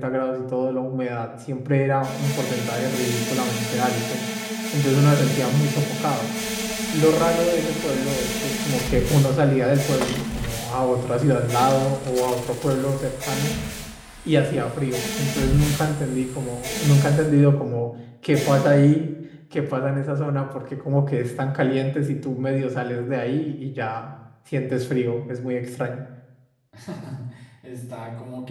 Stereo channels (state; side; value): identical; both; correlation 1.00